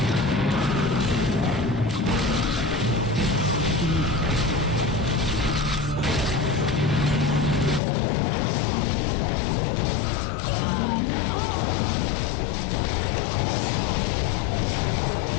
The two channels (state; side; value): drops out; right; at 7.8 s